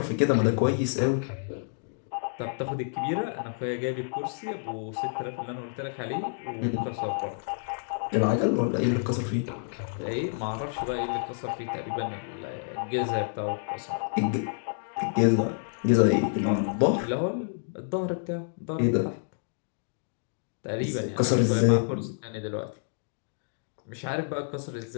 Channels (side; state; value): right; silent; digital silence